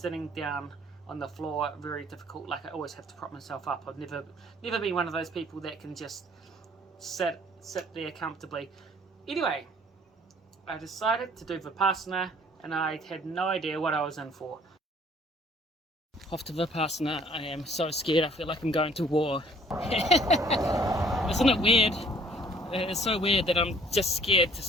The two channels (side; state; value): both; normal; correlation 0.56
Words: down on the floor very difficult. Like, I always have to prop myself up. I've never been one of those people that can just sit there comfortably. Anyway, I decided to do Vipassana, and I had no idea what I was in for. Off to Vipassana. I am so scared. I feel like I'm going to war. Isn't it weird? It's so weird that I'm just scared to